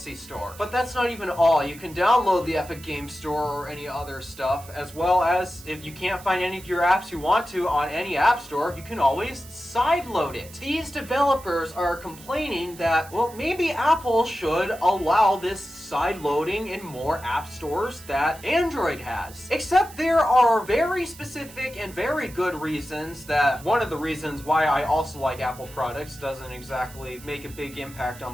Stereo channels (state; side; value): noise; right; hiss, 19 dB below the sound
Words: Store. But that's not even all. You can download the Epic Game Store or any other stuff, as well as if you can't find any of your apps you want to on any app store, you can always sideload it. These developers are complaining that, well, maybe Apple should allow this side loading in more app stores that Android has. Except there are very specific and very good reasons that one of the reasons why I also like Apple products, doesn't exactly make a big impact